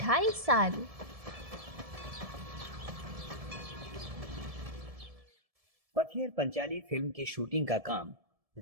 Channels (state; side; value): late; left; 1.7 ms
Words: साल। पथियर पंचाली फिल्म की शूटिंग का काम